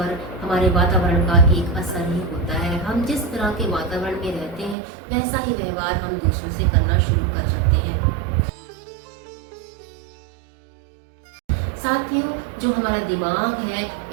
हमारे वातावरण का एक असर ही होता है। हम जिस तरह के वातावरण में रहते हैं वैसा ही व्यवहार हम दूसरों से करना शुरू कर सकते हैं। साथियों, जो हमारा दिमाग है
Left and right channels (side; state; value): left; drops out; at 4.8 s